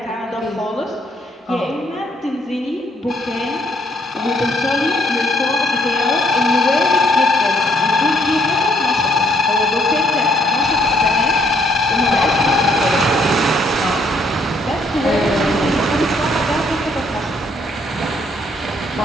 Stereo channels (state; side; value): normal; both; correlation 0.67